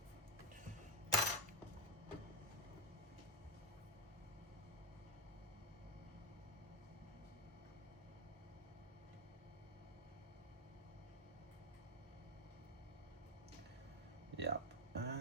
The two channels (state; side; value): normal; both; correlation 0.06